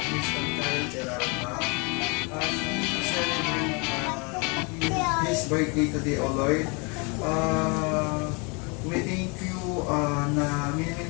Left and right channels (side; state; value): right; quieter; 31.4 dB